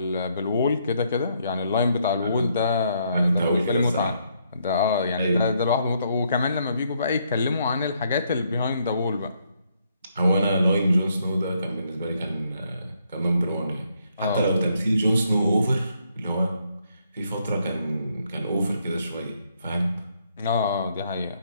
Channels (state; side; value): inverted; both; correlation -0.73